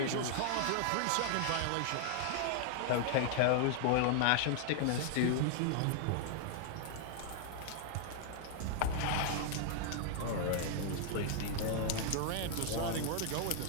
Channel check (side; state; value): both; different; correlation 0.00